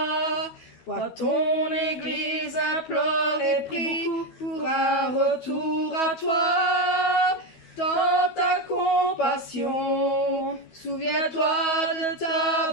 Vois ton Église implore et prie pour un retour à toi. Dans ta compassion, souviens-toi de ta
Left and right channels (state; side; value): late; right; 12 ms